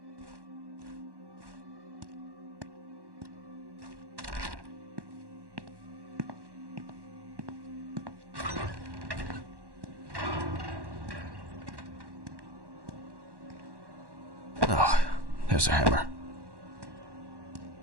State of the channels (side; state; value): left; late; 1.1 ms